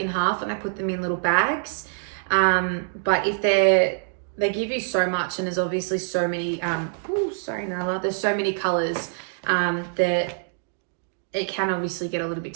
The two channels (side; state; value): left; silent; digital silence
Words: half and I put them in little bags. But if they give you so much, and there's obviously so many, sorry Nala, there's so many colors that it can obviously get a little bit